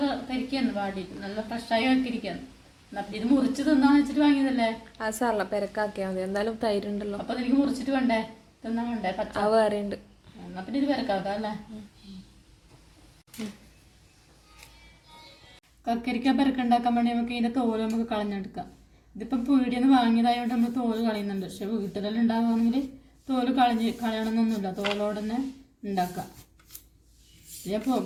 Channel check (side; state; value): both; identical; correlation 1.00